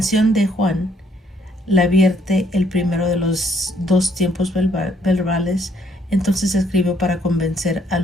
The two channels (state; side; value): normal; both; correlation 0.67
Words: de Juan la vierte el primero de los dos tiempos verbales, entonces escribió para convencer a